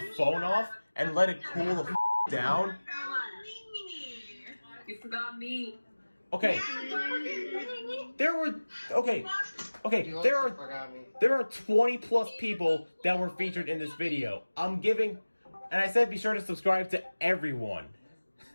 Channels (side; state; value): both; inverted; correlation -1.00